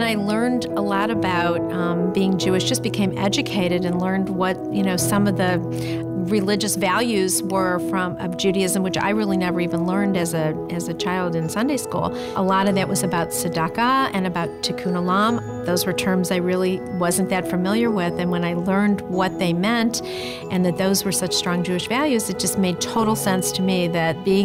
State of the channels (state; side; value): identical; both; correlation 1.00